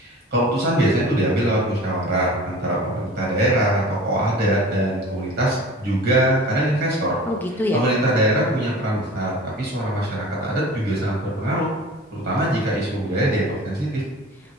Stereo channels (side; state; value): both; normal; correlation 0.41